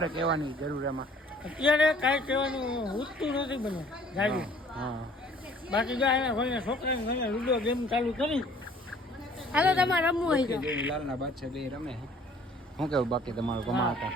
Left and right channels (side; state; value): both; normal; correlation 0.55